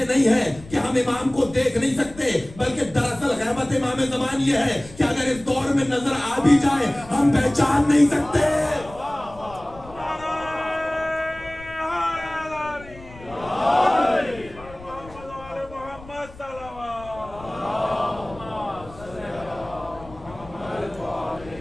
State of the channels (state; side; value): noise; left; rumble, 19 dB below the sound